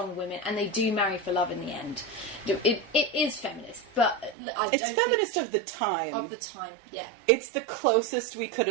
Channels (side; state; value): left; drops out; at 4.4 s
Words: women, and they do marry for love in the end. It is feminist, but It's feminist of the time. Of the time, yeah. It's the closest we could